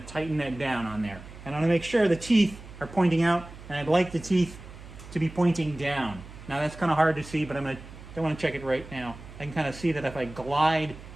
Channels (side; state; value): right; noise; hum, 16 dB below the sound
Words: tighten that down on there. And I'm going to make sure the teeth are pointing out, and I'd like the teeth to be pointing down. Now that's kind of hard to see, but don't want to check it right now. I can kind of see that if I